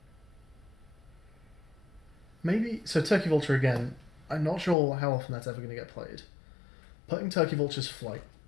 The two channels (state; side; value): drops out; right; at 4.8 s